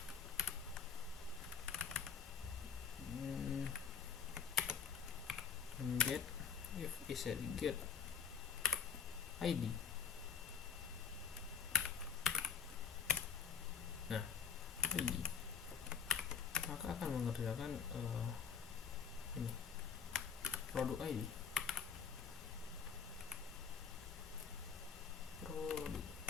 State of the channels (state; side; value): quieter; right; 6.5 dB